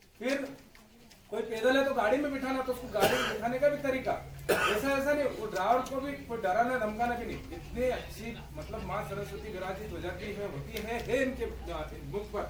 फिर कोई पैदल है तो गाड़ी में बिठाना, तो उसको गाड़ी में बिठाने का भी तरीका ऐसा नहीं, वो ड्राइवर को भी कोई डराना धमकाना भी नहीं। इतनी अच्छी मतलब माँ सरस्वती विराजित हो जाती है, होती है इनके मुख पर।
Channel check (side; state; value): both; identical; correlation 1.00